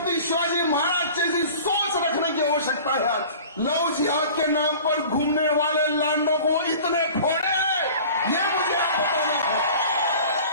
शिवाजी महाराज जैसी सोच रखने की आवश्यकता है। आज लव जिहाद के नाम पर घूमने वाले लांडों को इतने फोड़े, ये मुझे आप बताना है।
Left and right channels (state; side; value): inverted; both; correlation -0.42